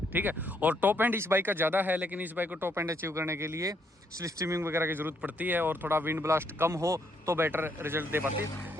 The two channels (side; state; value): both; normal; correlation 0.73